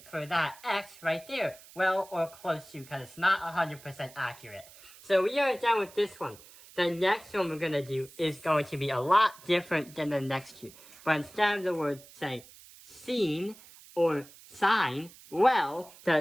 for that x right there. Well, or close to, because it's not 100% accurate. So we are done with this one. The next one we're going to do is going to be a lot different than the next two. But instead of the word saying sine or sine, well,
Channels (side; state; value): right; noise; hiss, 21 dB below the sound